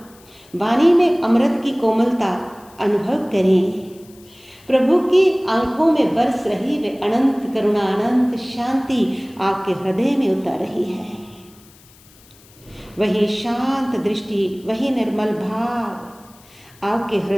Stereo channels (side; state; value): left; noise; hiss, 26 dB below the sound